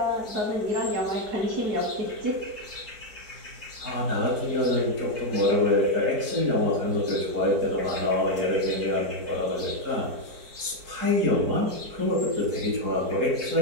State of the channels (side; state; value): left; late; 4.5 ms